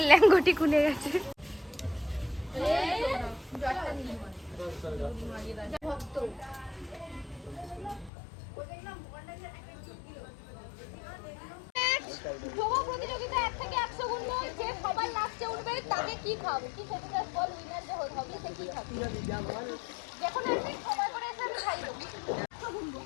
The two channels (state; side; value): drops out; right; at 8.1 s